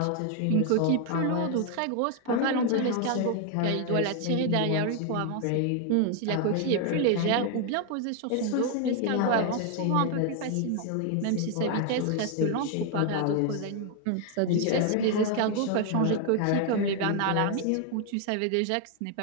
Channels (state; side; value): different; both; correlation 0.00